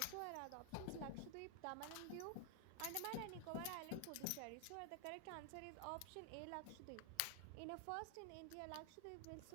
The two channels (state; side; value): different; both; correlation 0.00